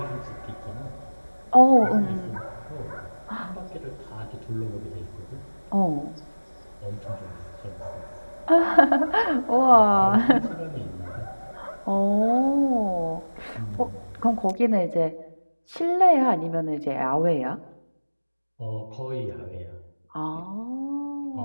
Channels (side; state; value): both; inverted; correlation -1.00